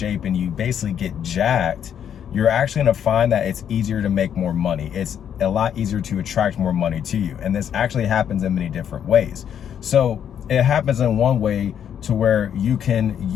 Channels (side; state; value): right; quieter; 9.0 dB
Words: and you basically get jacked, you're actually going to find that it's easier to make more money. It's a lot easier to attract more money to you. And this actually happens in many different ways. So it happens in one way to where you can